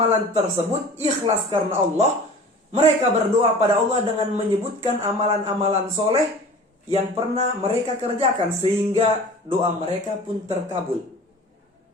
tersebut ikhlas karena Allah. Mereka berdoa pada Allah dengan menyebutkan amalan-amalan soleh yang pernah mereka kerjakan, sehingga doa mereka pun terkabul.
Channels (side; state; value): both; normal; correlation 0.42